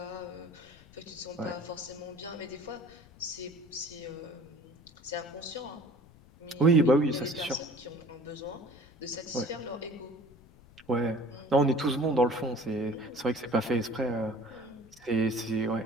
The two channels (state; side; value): noise; left; rumble, 24 dB below the sound